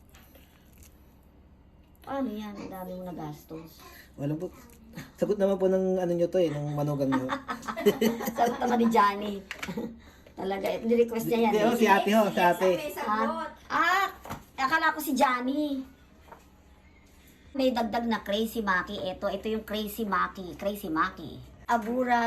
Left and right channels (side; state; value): both; identical; correlation 1.00